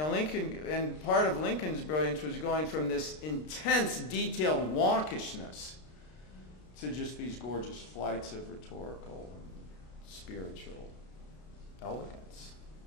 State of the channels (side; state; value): right; late; 33 ms